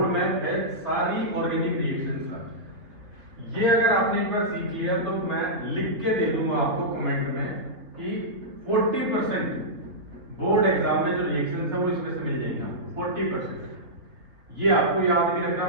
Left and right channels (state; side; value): late; left; 3.4 ms